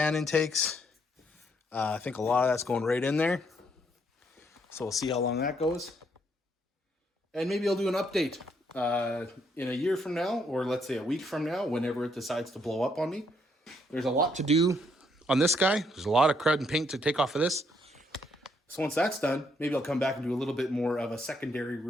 intakes. I think a lot of that's going right in there. So we'll see how long that goes. And maybe I'll do an update in a year from now, or let's say a week from now, whenever it decides to blow up on me. There's a lot to do on this guy. There's a lot of crud and paint to take off of this. So once that's done, maybe I'll come back and do a little bit more of a secondary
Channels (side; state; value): both; normal; correlation 0.72